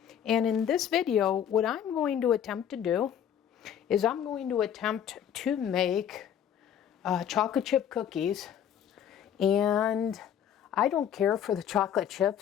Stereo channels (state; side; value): quieter; right; 9.2 dB